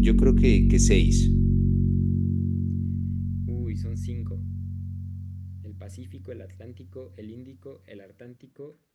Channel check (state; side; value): identical; both; correlation 1.00